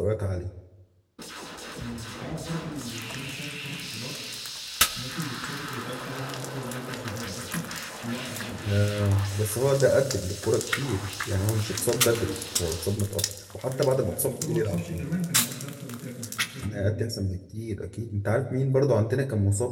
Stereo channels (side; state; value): both; identical; correlation 1.00